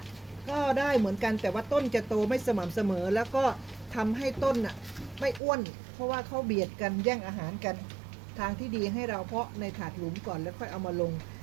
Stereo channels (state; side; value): drops out; left; at 5.4 s